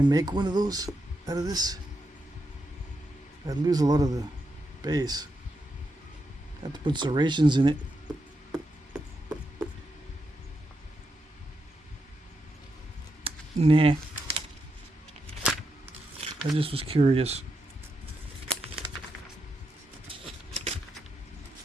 make one of those out of this? I'd lose a lot of the base. Have to put serrations in it. Nah. I just was curious.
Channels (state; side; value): normal; both; correlation 0.84